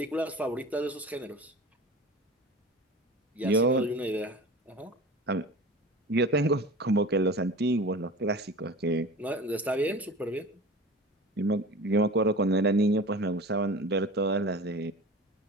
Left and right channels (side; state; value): both; normal; correlation 0.36